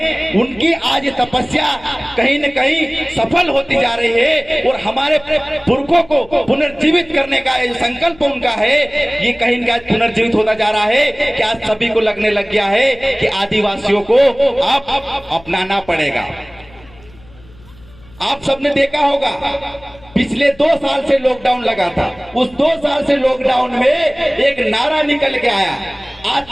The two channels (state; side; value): noise; left; hum, 24 dB below the sound